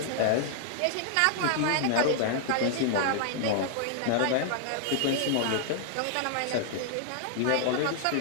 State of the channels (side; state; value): both; different; correlation -0.01